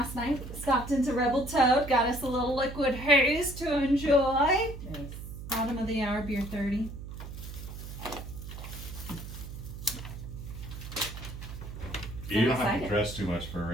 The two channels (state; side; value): noise; right; hum, 10 dB below the sound